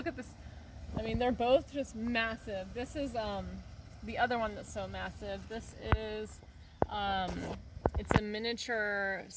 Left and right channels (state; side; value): identical; both; correlation 1.00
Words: at this. I mean, they're both just massive. This is the other one that's so massive. This is it's a miniature